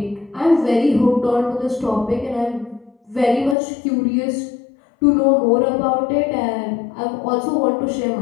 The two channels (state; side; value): drops out; right; at 3.6 s